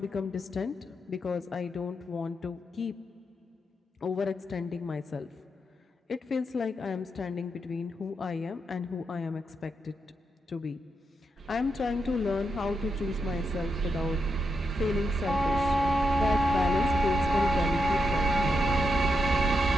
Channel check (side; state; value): both; normal; correlation 0.84